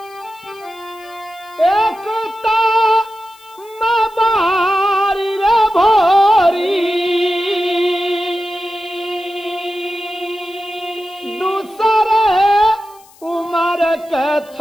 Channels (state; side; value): noise; left; hiss, 27 dB below the sound